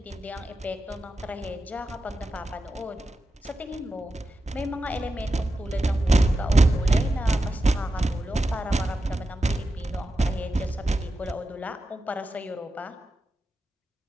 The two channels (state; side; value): normal; both; correlation 0.90